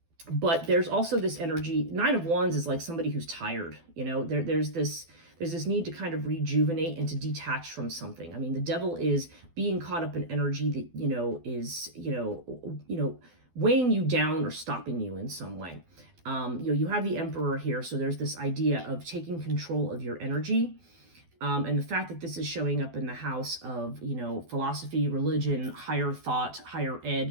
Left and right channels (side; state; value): left; late; 12 ms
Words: But there's also this energy. 9 of Wands is like somebody who's tired. There's this need to kind of rejuvenate and to detach from something. I mean, the Devil is being caught up in energy that, is, weighing you down or stopping you in some way. You have the Emperor here. So there's this idea of taking control of your energy. And the fact that this is showing up in the house of, philosophy, religion, higher thought, higher